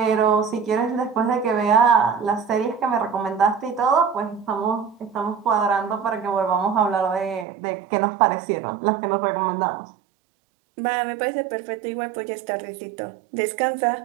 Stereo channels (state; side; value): drops out; left; at 7.5 s